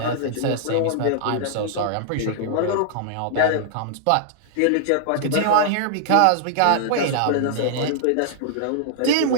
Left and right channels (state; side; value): different; both; correlation -0.01